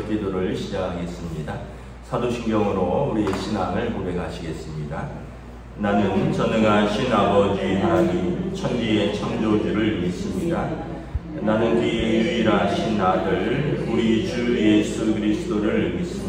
기도를 시작하겠습니다. 사도신경으로 우리의 신앙을 고백하시겠습니다. 나는 전능하신 아버지 하나님 천지의 창조주를 믿습니다. 나는 그의 유일하신 아들 우리 주 예수 그리스도를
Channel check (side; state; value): both; identical; correlation 1.00